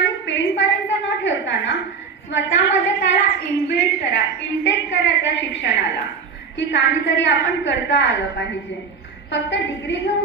पेन पर्यंत न ठेवताना स्वतःमध्ये त्याला इनबिल्ट करा, इंटेक करा त्या शिक्षणाला की काहीतरी आपण करता आलं पाहिजे. फक्त डिग्री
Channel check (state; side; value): quieter; left; 5.4 dB